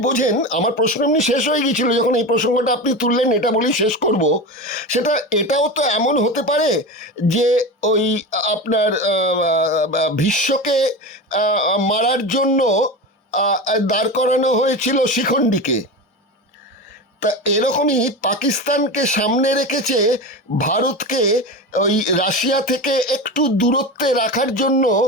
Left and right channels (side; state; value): both; normal; correlation 0.24